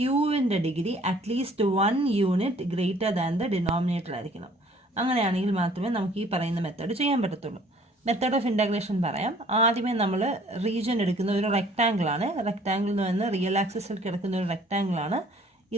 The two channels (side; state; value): both; normal; correlation 0.56